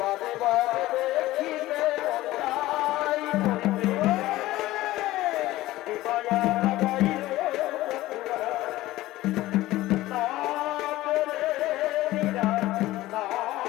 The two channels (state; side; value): quieter; right; 16.8 dB